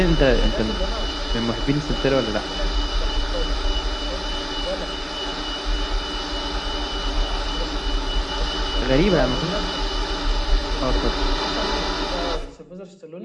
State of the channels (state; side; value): identical; both; correlation 1.00